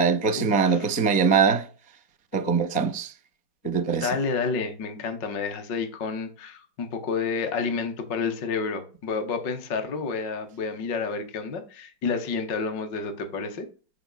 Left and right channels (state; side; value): late; right; 4.3 ms